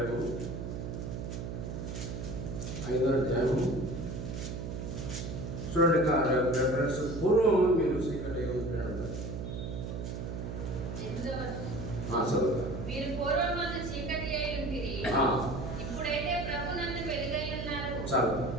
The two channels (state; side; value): noise; right; hum, 5 dB below the sound